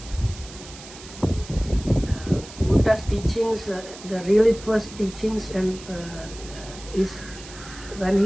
Buddha's teachings, the really first teachings, and is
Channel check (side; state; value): right; noise; hiss, 16 dB below the sound